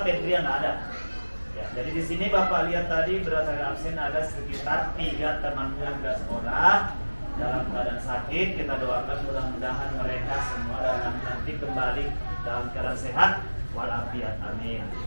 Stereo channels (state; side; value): inverted; both; correlation -1.00